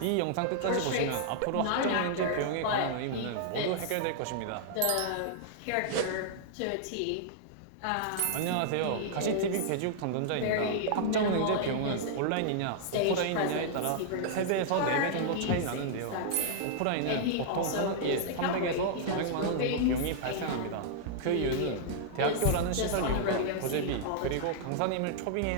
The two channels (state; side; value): different; both; correlation -0.01